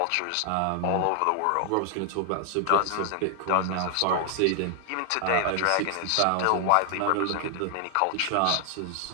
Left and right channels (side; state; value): both; different; correlation 0.00